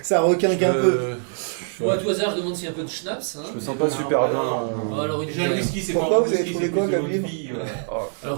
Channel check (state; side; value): silent; left; 57 dB below the other